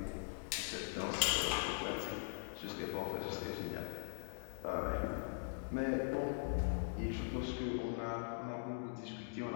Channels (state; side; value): silent; right; digital silence